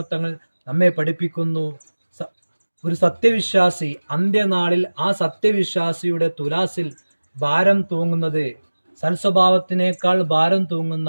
തങ്ങൾ നമ്മെ പഠിപ്പിക്കുന്നു, ഒരു സത്യവിശ്വാസി അന്ത്യനാളിൽ ആ സത്യവിശ്വാസിയുടെ തുലാസിൽ ഭാരം തൂങ്ങുന്നത് സൽസ്വഭാവത്തിനേക്കാൾ ഭാരം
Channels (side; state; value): both; inverted; correlation -1.00